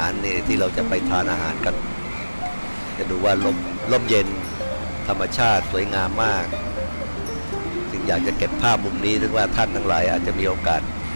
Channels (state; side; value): inverted; both; correlation -1.00